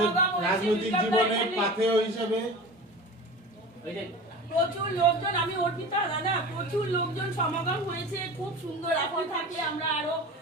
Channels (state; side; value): normal; both; correlation 0.34